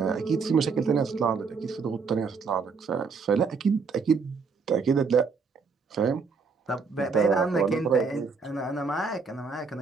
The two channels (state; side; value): quieter; left; 5.0 dB